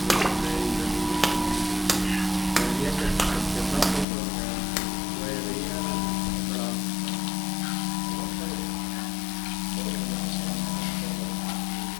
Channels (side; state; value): right; drops out; at 4.0 s